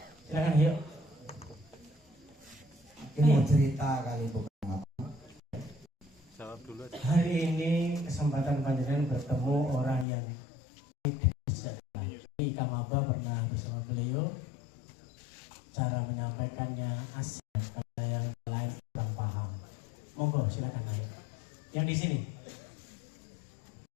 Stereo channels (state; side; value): drops out; right; at 10.1 s